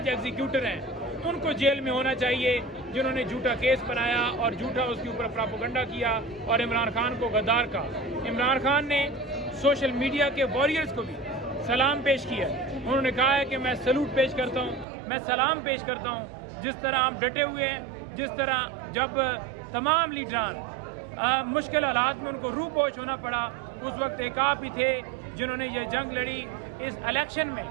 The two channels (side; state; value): left; drops out; at 14.9 s